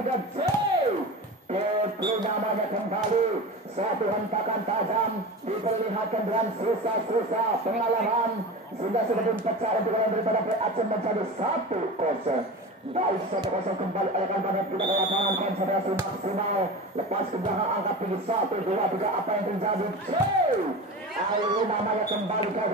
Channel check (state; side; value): normal; both; correlation 0.29